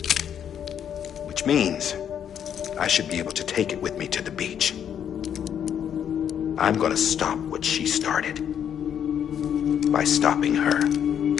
Which means I should be able to take it with me to the beach. I'm gonna stop what she started by stopping her.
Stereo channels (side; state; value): right; quieter; 8.9 dB